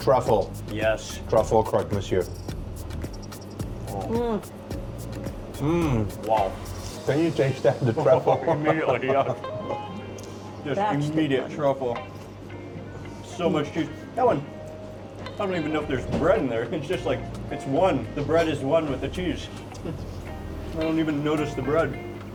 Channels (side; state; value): both; identical; correlation 1.00